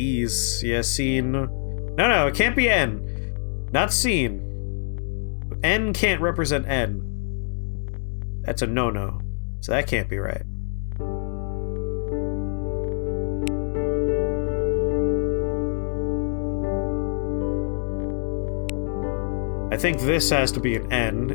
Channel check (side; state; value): right; silent; digital silence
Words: Yeah, seen. No, it can't be N. Not seen. N can't represent N. That's a no-no. So that can't be right. I think this has to be an